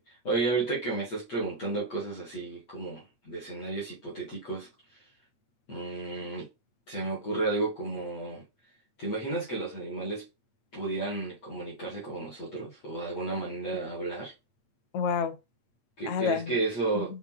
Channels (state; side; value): late; right; 8.6 ms